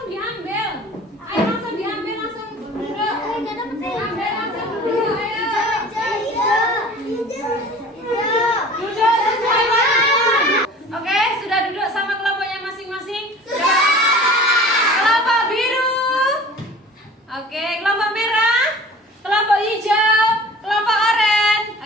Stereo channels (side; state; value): both; normal; correlation 0.43